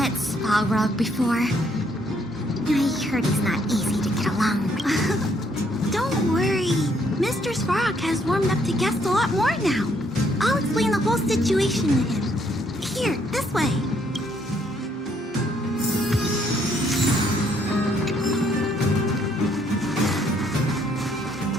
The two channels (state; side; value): normal; both; correlation 0.69